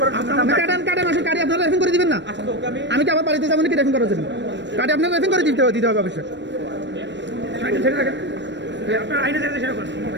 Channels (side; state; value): left; late; 0.52 ms